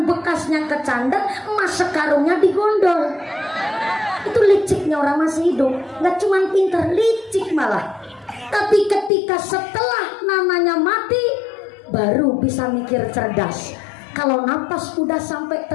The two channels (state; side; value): drops out; right; at 9.1 s